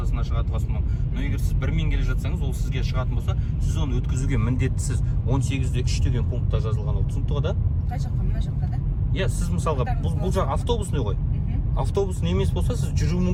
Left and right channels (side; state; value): both; identical; correlation 1.00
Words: шығатын болса, но егер сіз бірмен келе жатсаңыз, ол сізге шығатын болса, сіз оны өткізуге міндеттісіз. 18-3 деген пунктта жазылған ол, түсінікті ғой да? Қай жаққа, мына жаққа да? Иә, сіз мысалға бұл жақ автобусный ғой. Автобусный емес болса, сіз жүру